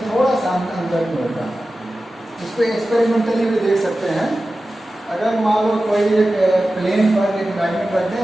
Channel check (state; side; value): normal; both; correlation 0.94